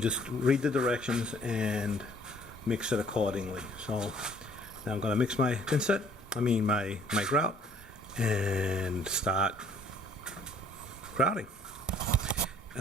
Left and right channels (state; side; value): normal; both; correlation 0.58